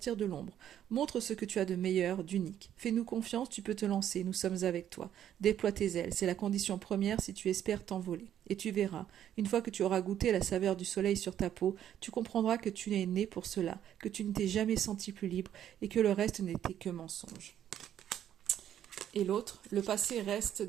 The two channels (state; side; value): quieter; left; 10.5 dB